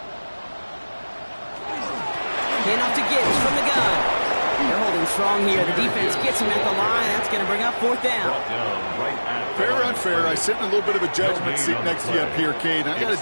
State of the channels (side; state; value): both; inverted; correlation -1.00